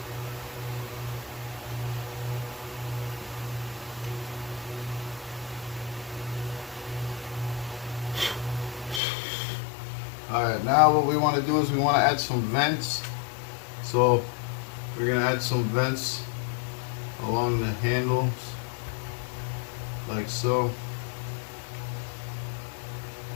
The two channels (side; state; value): right; drops out; at 9.0 s